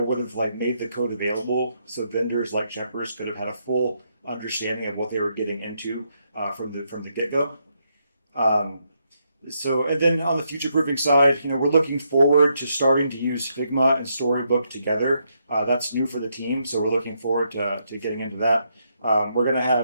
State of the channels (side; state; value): both; inverted; correlation -0.78